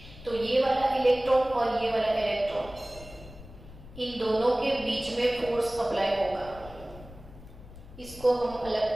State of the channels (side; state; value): left; noise; rumble, 17 dB below the sound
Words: तो ये वाला इलेक्ट्रॉन और ये वाला इलेक्ट्रॉन, इन दोनों के बीच में फोर्स अप्लाई होगा। इसको हम अलग